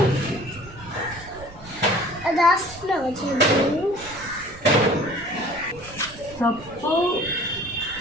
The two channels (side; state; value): right; noise; rumble, 19 dB below the sound